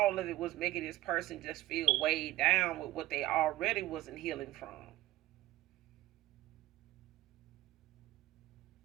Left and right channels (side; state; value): left; quieter; 16.3 dB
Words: of it was making this person just feel weighed down with what they already wasn't healing from.